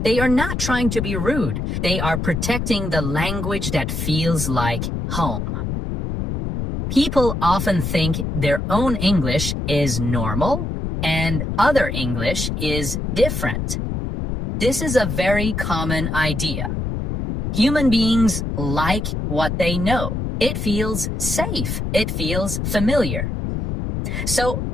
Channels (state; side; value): noise; left; rumble, 2 dB below the sound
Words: They are not trying to be rude. They are protecting the language that feels like home. People often think their own English is normal and other English is different. This is a very common idea. Human beings like what they know. It feels safe. It feels familiar. So